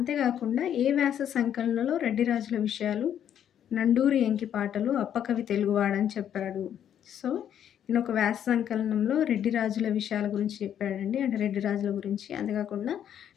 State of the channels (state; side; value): quieter; right; 9.7 dB